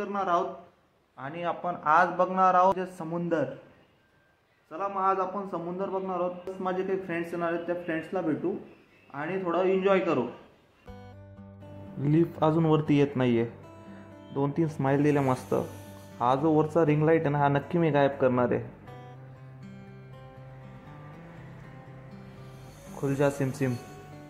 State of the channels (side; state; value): both; identical; correlation 1.00